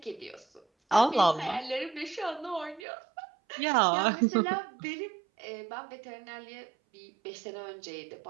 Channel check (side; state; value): left; drops out; at 2.8 s